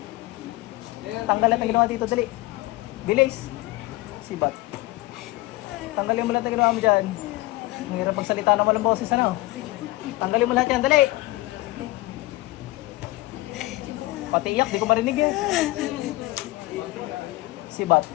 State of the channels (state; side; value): quieter; right; 19.6 dB